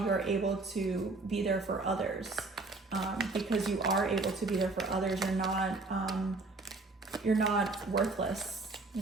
you're able to be there for others, because you are able to be there for others. You're not worthless.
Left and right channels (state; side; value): quieter; left; 3.5 dB